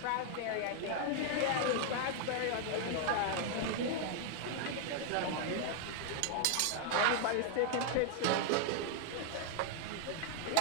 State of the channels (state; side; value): different; both; correlation 0.00